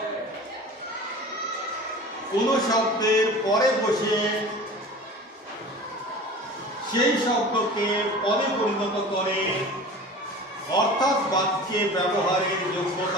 কোন শব্দের পরে বসে সেই শব্দকে পদে পরিণত করে, অর্থাৎ বাক্যে ব্যবহারের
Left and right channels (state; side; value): normal; both; correlation 0.38